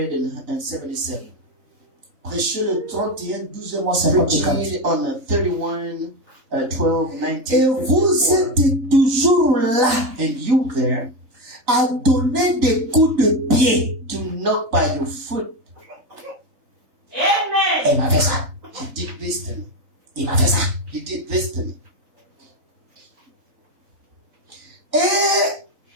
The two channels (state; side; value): late; left; 3.9 ms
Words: Prêchez le 31, 12 mois 54. preaching on the 31, 12, Et 19, vous 54. êtes toujours là And you there à donner des coups de pied. to knock by your foot. Amen. Il m'a fait ça. He did this to me. Il m'a fait ça. He did this to me. Et